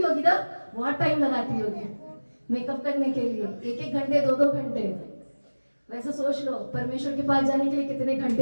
होगी ना, बहुत टाइम लगाती होगी मेकअप करने के लिए, 1-1 घंटे 2-2 घंटे। वैसे सोच लो परमेश्वर के पास जाने के लिए कितने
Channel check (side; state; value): both; inverted; correlation -1.00